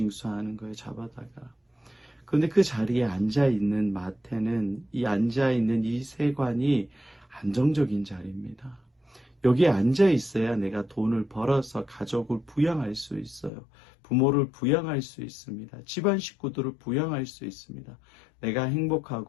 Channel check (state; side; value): drops out; right; at 13.5 s